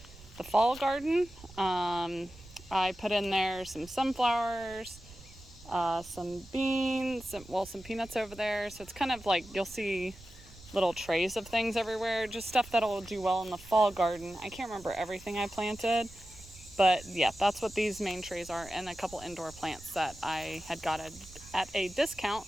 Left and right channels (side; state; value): right; noise; rumble, 20 dB below the sound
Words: the fall garden. I put in there some sunflowers, some beans, some peanuts over there. So it's kind of like you'll see little trays of things everywhere, just stuff that'll do well in the fall garden. I can't remember everything I planted, but yeah, that's what these main trays are, and a couple indoor plants that I had got at a discount,